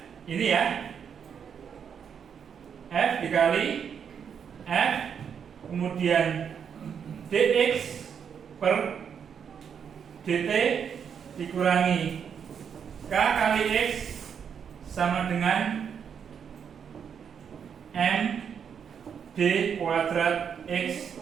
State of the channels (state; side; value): quieter; left; 7.4 dB